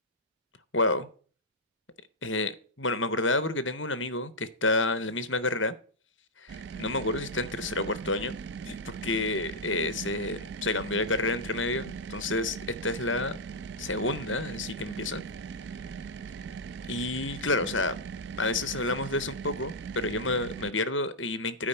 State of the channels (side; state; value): both; normal; correlation -0.07